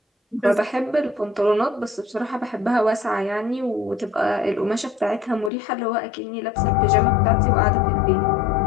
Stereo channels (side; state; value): right; drops out; at 5.5 s